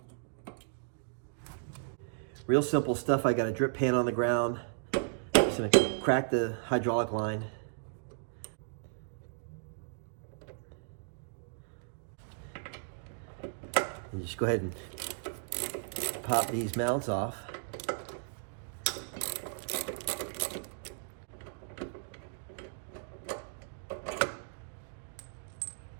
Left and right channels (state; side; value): silent; left; digital silence